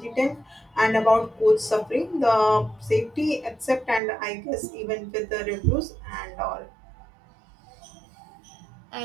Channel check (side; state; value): left; drops out; at 4.0 s